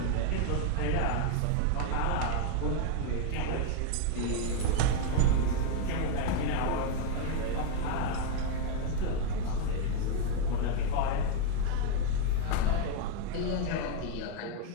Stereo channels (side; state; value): both; different; correlation 0.01